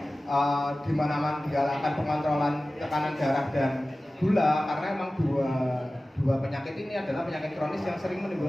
di mana-mana digalakkan pengontrolan tekanan darah dan gula? Karena emang dua penyakit ini adalah penyakit kronis yang sering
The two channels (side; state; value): both; normal; correlation 0.96